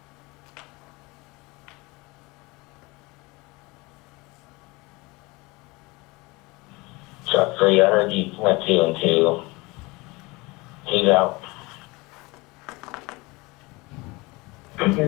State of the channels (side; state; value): right; quieter; 24.0 dB